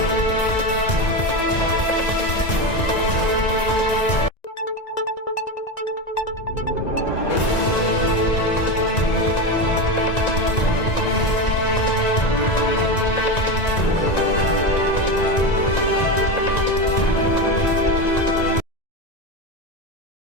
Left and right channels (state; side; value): late; right; 1.9 ms